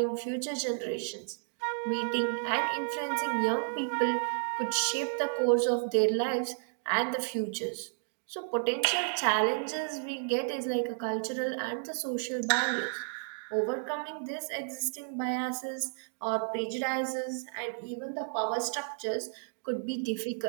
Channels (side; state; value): left; silent; digital silence